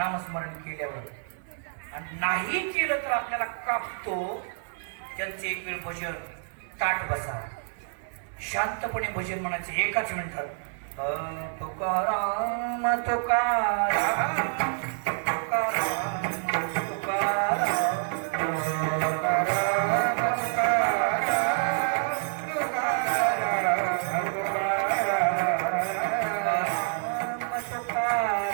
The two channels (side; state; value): left; silent; digital silence